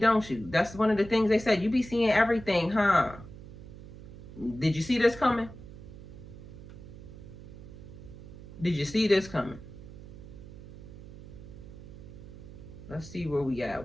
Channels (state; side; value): noise; right; hum, 15 dB below the sound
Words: you? That's one of the things they said. You be seeing everything, huh? Did you see this coming? Did you see this coming? Let's see where we